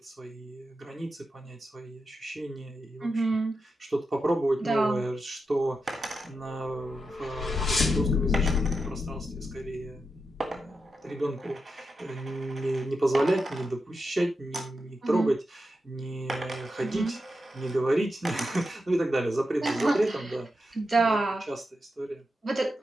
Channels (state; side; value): normal; both; correlation 0.88